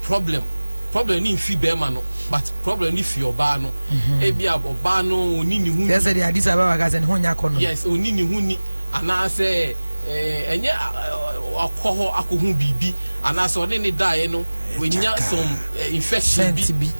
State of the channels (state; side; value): inverted; both; correlation -1.00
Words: problem ni fi be ma no but problem ni fi oba no e bia oba no oni ni hu yes the Addis Ababa ga se ne hu nya kono yes oni ni hu ni ana se enye akoho akohu bibi ana so ne dae no wenya some infection bi